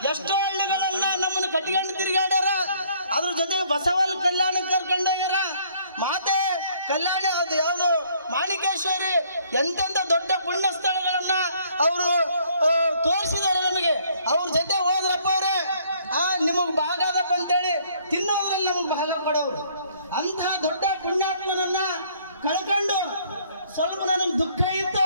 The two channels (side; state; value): both; inverted; correlation -0.62